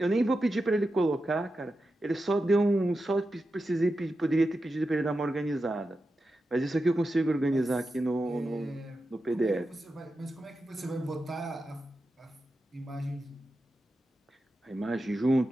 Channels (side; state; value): both; normal; correlation 0.90